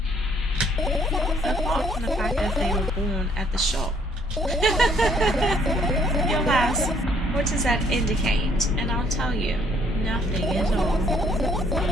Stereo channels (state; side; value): normal; both; correlation 0.65